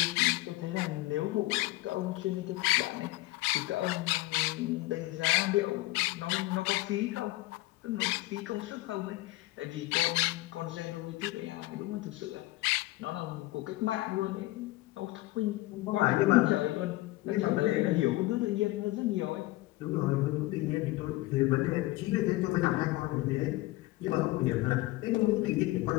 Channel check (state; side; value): quieter; right; 19.4 dB